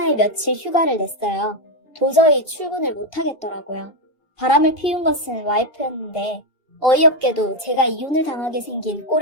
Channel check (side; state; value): right; late; 2.8 ms